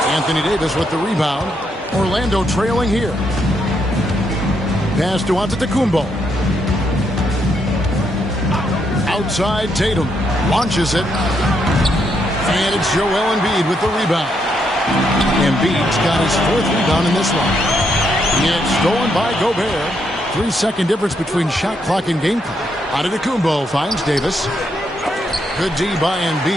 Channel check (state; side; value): normal; both; correlation 0.77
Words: Anthony Davis with the rebound. Orlando trailing here. Pass to Antetokounmpo. Outside Tatum. Launches it. And it's Joel Embiid with the rebound. Embiid's got his 4th rebound in this one. It's stolen by Gobert. 3-second difference between shot clock and game clock. Antetokounmpo finds Davis. Good D by